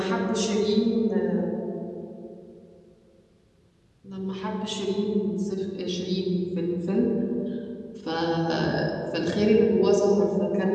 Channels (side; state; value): both; identical; correlation 1.00